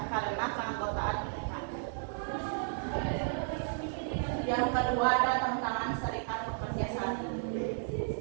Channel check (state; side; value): silent; left; 55 dB below the other